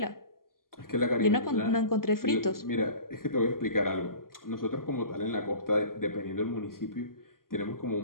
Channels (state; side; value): late; right; 0.91 ms